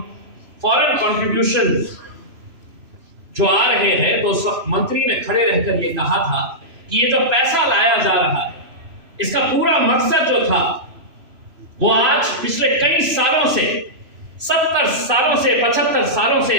फॉरेन कंट्रीब्यूशन जो आ रहे हैं, तो सब मंत्री ने खड़े रहकर यह कहा था कि ये जो पैसा लाया जा रहा है, इसका पूरा मकसद जो था वो आज पिछले कई सालों से, 70 सालों से, 75 सालों से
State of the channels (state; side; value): late; left; 3.0 ms